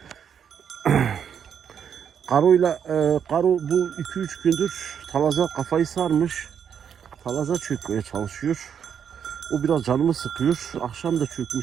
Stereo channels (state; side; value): quieter; left; 8.0 dB